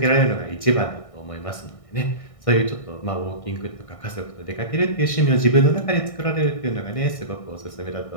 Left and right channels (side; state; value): right; late; 1.6 ms